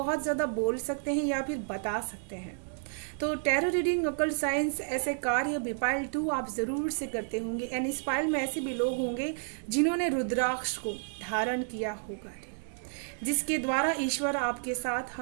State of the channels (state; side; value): silent; left; digital silence